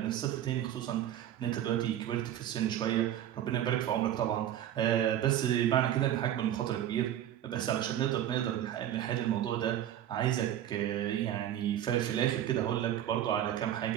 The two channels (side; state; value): left; quieter; 11.4 dB